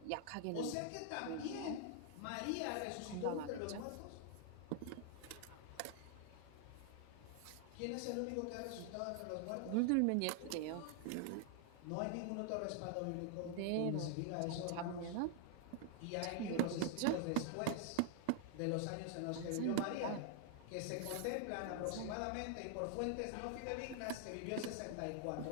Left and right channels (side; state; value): both; different; correlation 0.00